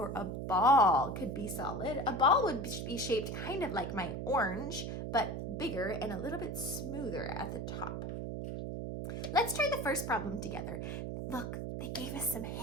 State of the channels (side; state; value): right; noise; hum, 4 dB below the sound